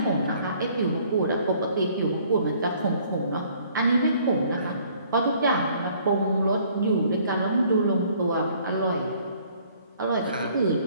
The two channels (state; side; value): inverted; both; correlation -0.59